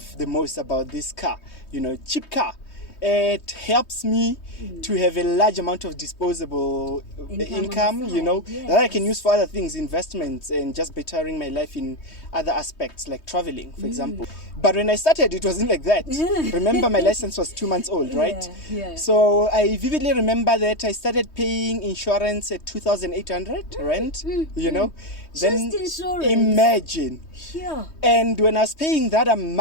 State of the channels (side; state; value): right; late; 3.2 ms